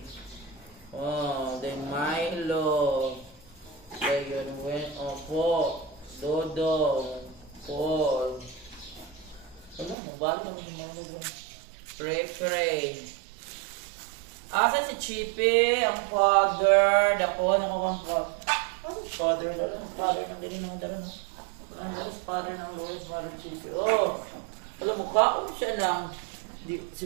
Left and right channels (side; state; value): left; drops out; at 10.0 s